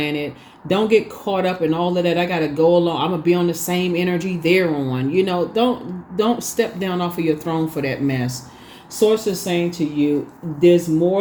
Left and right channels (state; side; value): identical; both; correlation 1.00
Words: Don't get caught up in all of that. I gotta go along. I'm gonna be on the same energy they're on. Don't step down off of your throne for that mess. Source is saying to you, there's